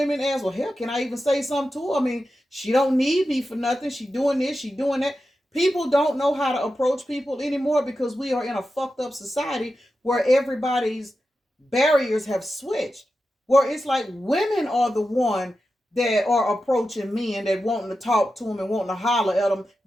as, well, hell, can I even say something to her? I mean, she don't need me for nothing. She doing this, she doing that. People don't know how to approach people anymore because we are in a fucked up society where everybody's barriers have switched. Where it's like women are the one that are approaching men that wanting to talk to them and wanting to holler at them.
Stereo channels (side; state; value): both; normal; correlation 0.91